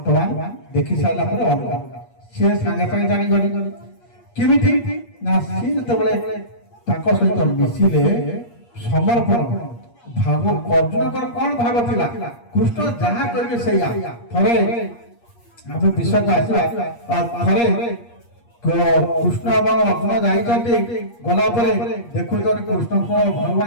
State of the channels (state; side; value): late; right; 8.5 ms